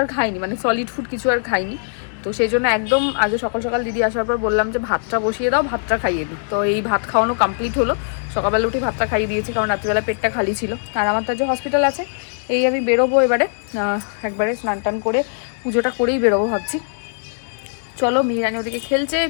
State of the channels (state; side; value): silent; right; digital silence